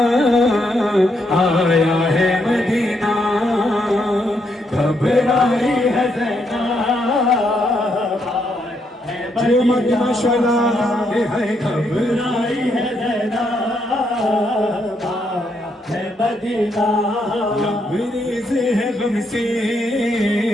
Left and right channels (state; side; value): normal; both; correlation 0.77